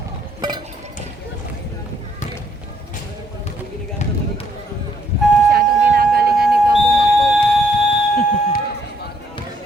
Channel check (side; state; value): both; normal; correlation 0.69